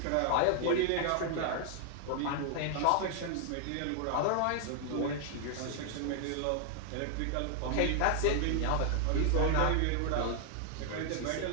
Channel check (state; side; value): different; both; correlation 0.00